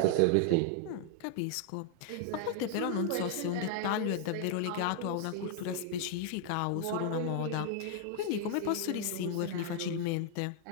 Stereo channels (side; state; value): both; different; correlation 0.00